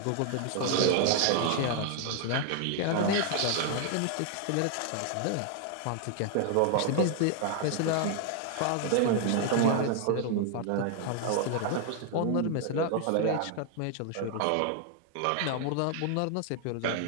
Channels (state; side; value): different; both; correlation 0.00